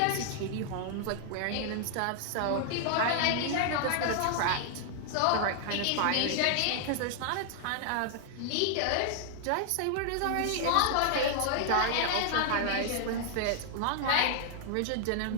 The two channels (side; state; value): both; different; correlation 0.00